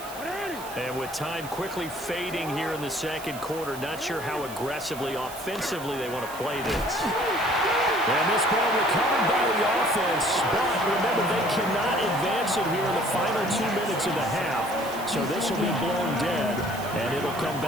And with time quickly fading here in the second quarter, not sure how aggressively, offensively they want to play this. And this ball recovered by the offense, but remember, they cannot advance it here in the final 2 minutes of the half. So this will be blown dead, and it'll come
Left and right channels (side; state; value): right; noise; hiss, 15 dB below the sound